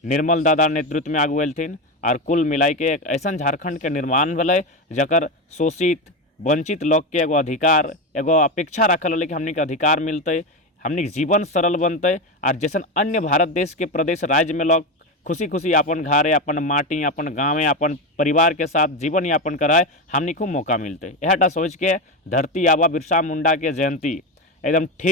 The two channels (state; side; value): normal; both; correlation 0.15